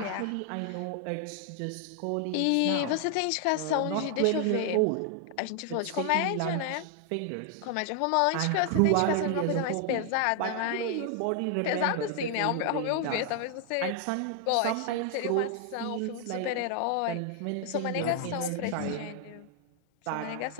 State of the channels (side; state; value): both; different; correlation 0.00